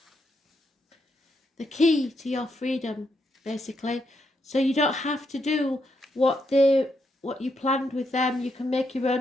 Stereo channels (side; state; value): both; normal; correlation 0.80